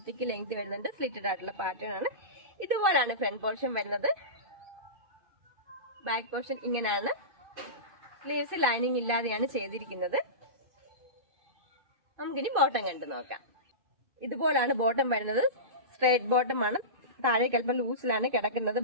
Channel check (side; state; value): left; late; 2.5 ms